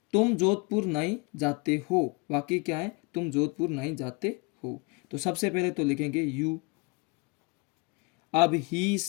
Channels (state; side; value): quieter; right; 28.7 dB